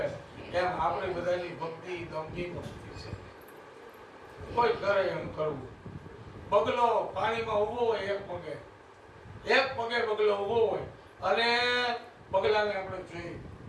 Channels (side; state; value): both; identical; correlation 1.00